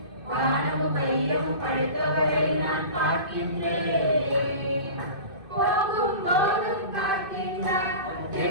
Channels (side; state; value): left; late; 2.6 ms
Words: வானமும் வையமும் படைத்தவரை நான் பார்க்கின்றேன் போகும் போதும் காக்கின்றார்